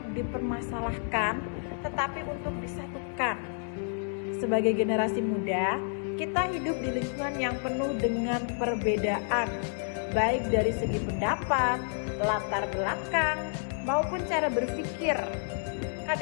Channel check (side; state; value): right; silent; 58 dB below the other